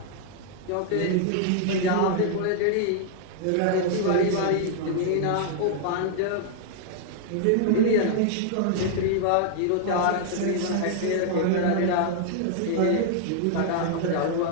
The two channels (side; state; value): both; different; correlation -0.01